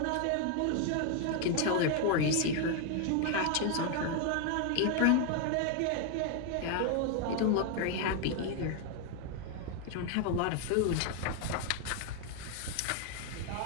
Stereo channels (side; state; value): both; different; correlation 0.01